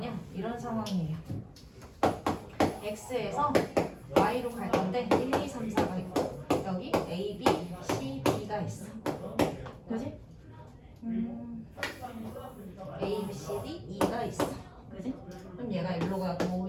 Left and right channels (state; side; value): identical; both; correlation 1.00